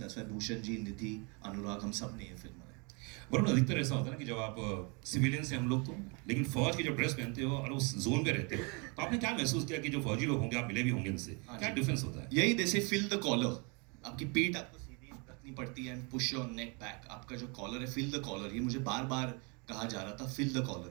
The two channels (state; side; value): quieter; left; 32.2 dB